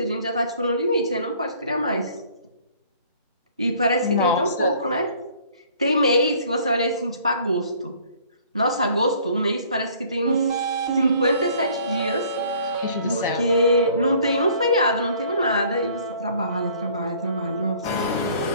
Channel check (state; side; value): inverted; both; correlation -0.56